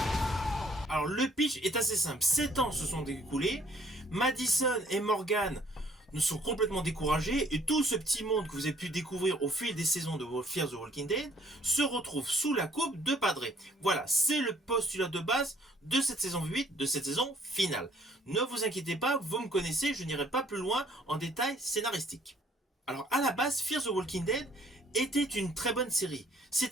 Alors le pitch est assez simple, 7 ans se sont écoulés, Madison et Morgan nous sont complètement découragés et tout ce petit monde que vous avez pu découvrir au fil des saisons de Fear the Walking Dead se retrouve sous la coupe de Padre. Voilà, c'est le postulat de base de cette saison 8, de cette saison finale. Ne vous inquiétez pas, vous me connaissez, je n'irai pas plus loin en détail scénaristique. Alors à la base, Fear the Walking Dead était une très bonne série.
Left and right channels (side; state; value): both; normal; correlation 0.61